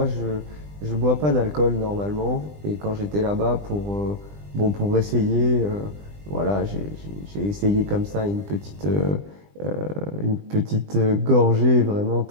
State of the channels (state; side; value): late; left; 20 ms